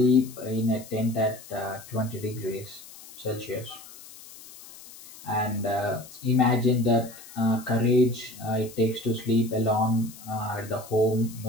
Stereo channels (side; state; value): left; noise; hiss, 18 dB below the sound